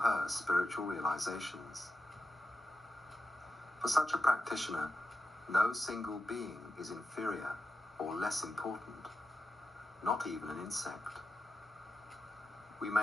spiritual realizations. For such a practitioner, no single being is inferior or less important, not even an insect. We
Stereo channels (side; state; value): both; normal; correlation 0.89